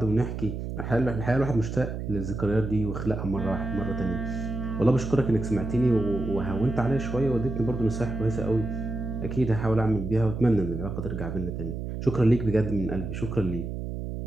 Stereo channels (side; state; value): right; noise; hum, 5 dB below the sound